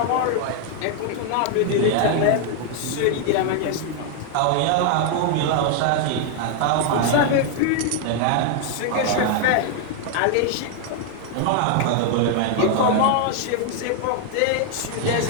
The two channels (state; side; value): different; both; correlation 0.00